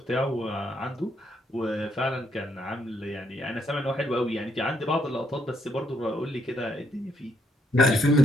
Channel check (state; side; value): normal; both; correlation 0.74